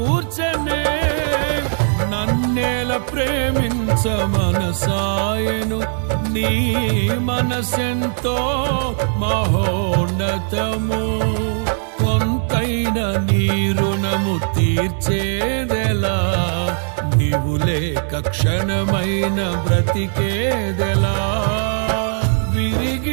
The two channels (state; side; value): silent; left; digital silence